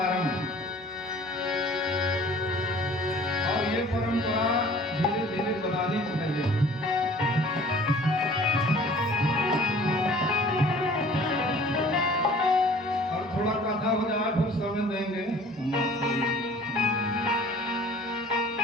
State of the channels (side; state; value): both; normal; correlation 0.49